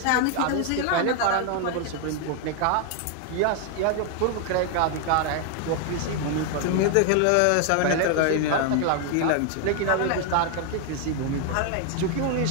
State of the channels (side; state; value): both; different; correlation 0.00